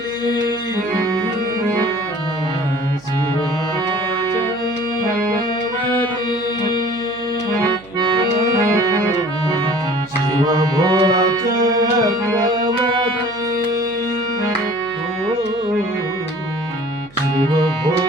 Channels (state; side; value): noise; right; hum, 24 dB below the sound